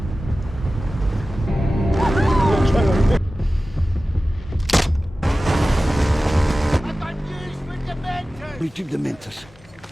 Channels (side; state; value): both; normal; correlation 0.96